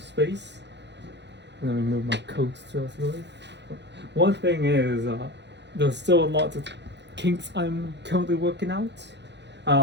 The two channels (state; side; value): late; left; 0.51 ms